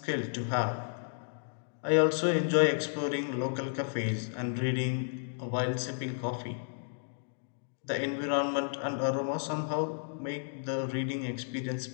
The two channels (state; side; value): silent; right; digital silence